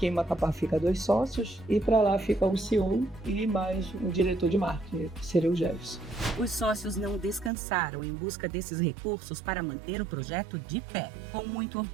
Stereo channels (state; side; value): drops out; left; at 7.5 s